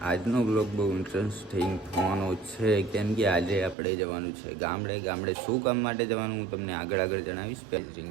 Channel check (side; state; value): left; drops out; at 3.8 s